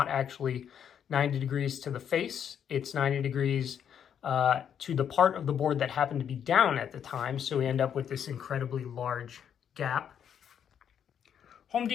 actually 90 degrees to the face. It's 90 degrees to the part of the board that happened to be down at the time, so we end up with this incredibly large gap. Home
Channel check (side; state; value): right; quieter; 8.6 dB